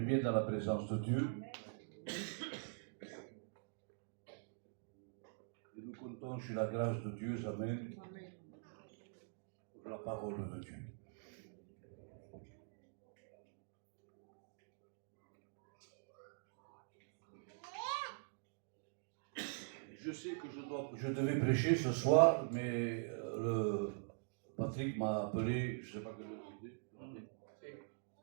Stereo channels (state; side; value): silent; left; digital silence